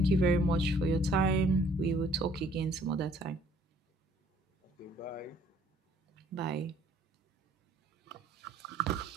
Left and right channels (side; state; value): both; normal; correlation 0.60